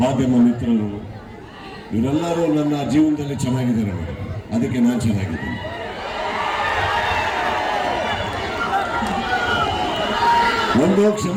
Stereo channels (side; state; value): both; identical; correlation 1.00